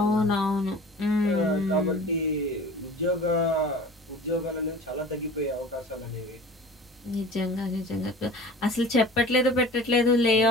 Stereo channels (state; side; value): normal; both; correlation 0.41